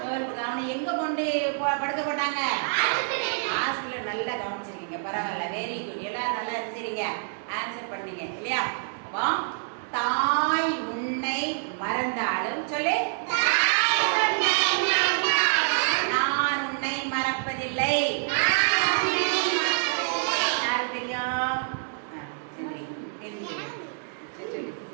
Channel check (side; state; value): left; silent; digital silence